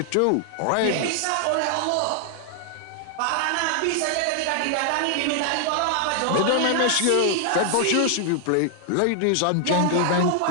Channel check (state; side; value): different; both; correlation 0.00